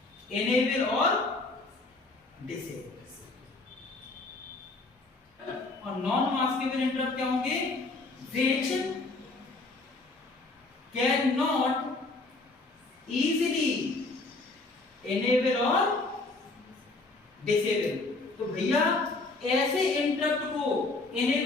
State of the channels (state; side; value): quieter; right; 3.3 dB